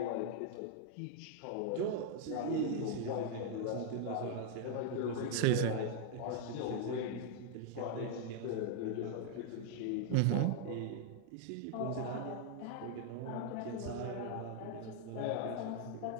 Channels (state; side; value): different; both; correlation -0.01